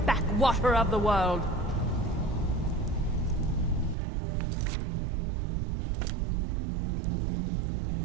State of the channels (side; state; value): left; drops out; at 4.0 s